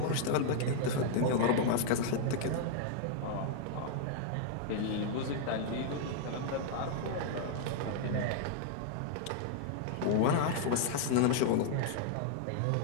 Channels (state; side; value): different; both; correlation -0.01